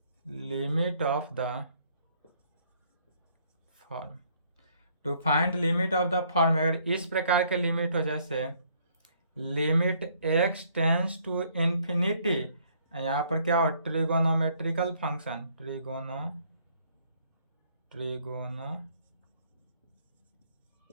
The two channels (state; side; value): inverted; both; correlation -0.65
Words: limit of the form, अगर इस प्रकार के लिमिट हो, जैसे limit x tends to infinity, यहाँ पर क्या हो ट्रिगोनोमेट्रिकल फंक्शन,